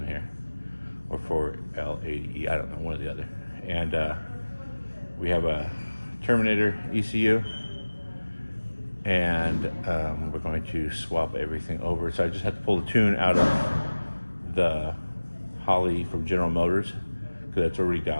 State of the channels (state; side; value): inverted; both; correlation -1.00